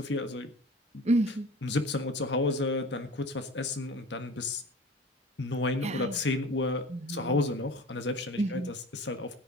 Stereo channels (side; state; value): both; normal; correlation 0.40